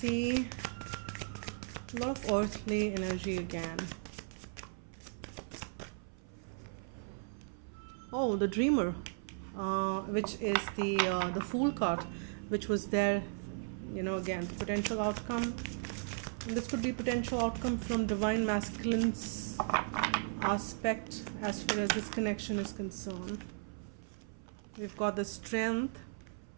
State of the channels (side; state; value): left; silent; 53 dB below the other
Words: a lot of earthly energy again. Oh, the Dreamer, which is the Fool card, which was there, again, potential outcome. And this could be potential outcome from divine masculine's aspect as far as this connection is concerned. We've got the Strength.